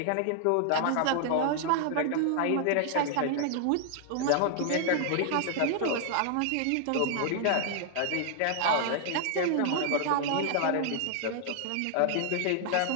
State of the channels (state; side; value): different; both; correlation 0.00